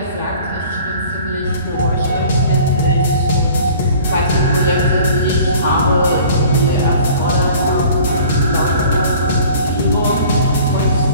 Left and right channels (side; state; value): both; inverted; correlation -0.47